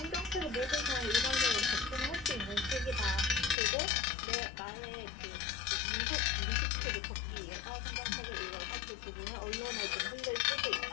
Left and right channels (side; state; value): right; drops out; at 3.6 s